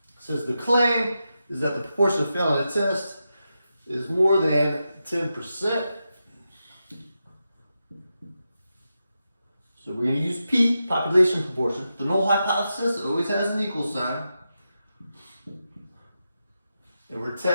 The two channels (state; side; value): inverted; both; correlation -0.89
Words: It says the claim is that the proportion of failing a test is more than 10%. So we're going to use P, population proportion. The null hypothesis always has an equal sign. And we're